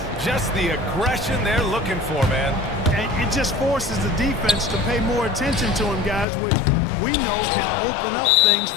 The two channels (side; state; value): right; drops out; at 6.2 s